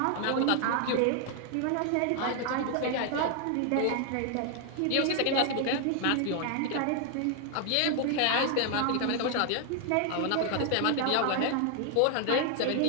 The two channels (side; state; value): both; different; correlation 0.00